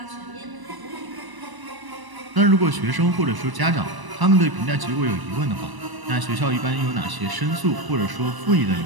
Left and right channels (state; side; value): late; left; 1.0 ms